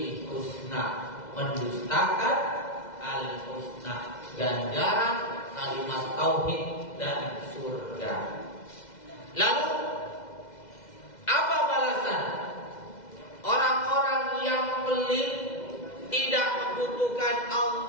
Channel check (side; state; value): right; late; 2.0 ms